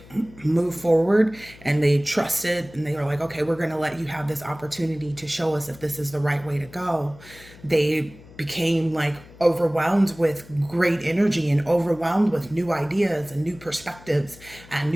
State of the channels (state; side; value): noise; left; hum, 21 dB below the sound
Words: move forward and they trusted and they were like, okay, we're going to let you have this opportunity to show us if this is the right way to go. They became like overwhelmed with great energy and overwhelmed with new ideas and new perspectives and